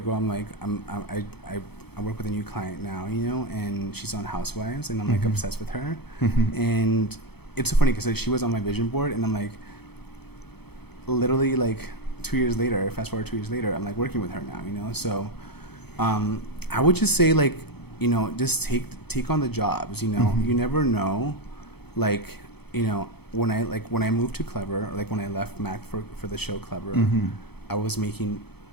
I'm like I work with a new client now, you know, and she's on Housewives, and I'm like obsessed with her, and it's so funny because like she was on my vision board, and I'm like, literally like 2 years later, fast forward 2 years later, I'm like working with her now, you know. So I would just say like, you know, just take on the jobs, you know. You never know, like, you know, when I moved to Clever, or like when I left Mac for the show Clever, I was making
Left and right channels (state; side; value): late; right; 0.97 ms